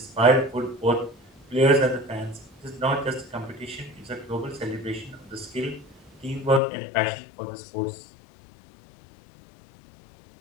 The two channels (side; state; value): right; drops out; at 6.6 s